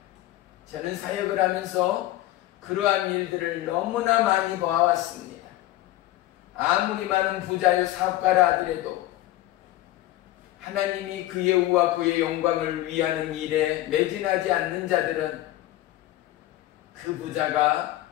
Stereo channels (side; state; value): right; quieter; 15.6 dB